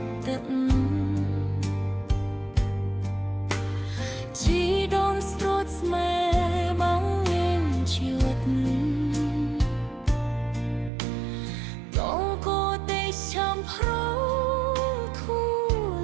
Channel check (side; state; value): left; drops out; at 10.9 s